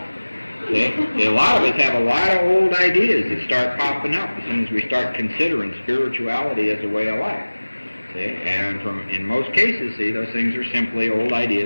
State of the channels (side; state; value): both; inverted; correlation -1.00